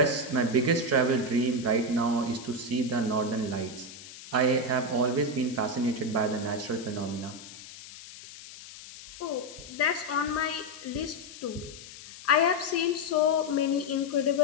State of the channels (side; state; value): left; noise; hiss, 16 dB below the sound